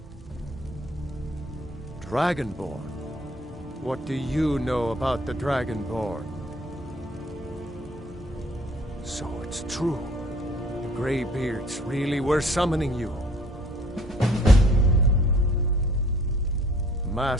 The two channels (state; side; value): normal; both; correlation 0.57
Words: Dragonborn? What do you know about the Dragonborn? So it's true. The Greybeards really were summoning you.